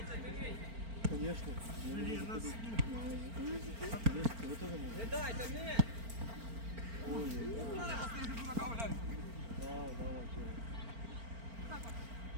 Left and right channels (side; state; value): left; late; 4.4 ms